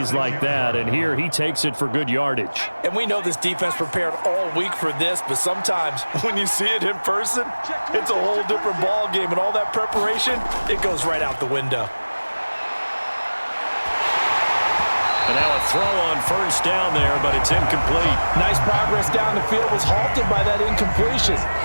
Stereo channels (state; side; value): inverted; both; correlation -1.00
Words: like that, and here he takes it for good yardage. And we know this defense prepared all week for this, but sometimes when you see it in person, it's a whole different ball game, and all that preparation, it goes right out the window. And now a throw on 1st down there, but it's incomplete. Nice progress down the field, was halted by that incompletion.